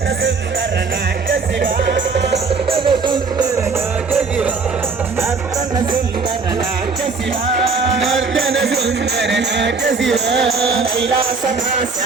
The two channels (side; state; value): left; quieter; 4.6 dB